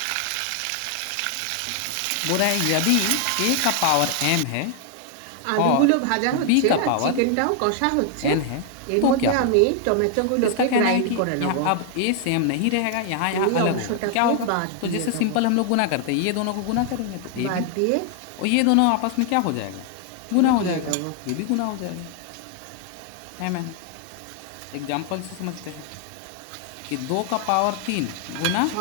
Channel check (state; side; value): different; both; correlation 0.00